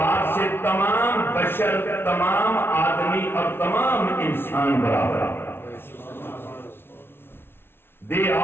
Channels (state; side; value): late; right; 0.11 ms